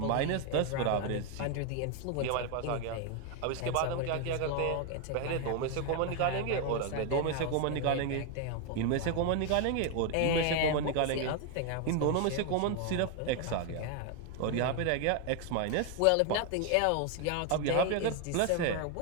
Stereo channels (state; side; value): different; both; correlation 0.01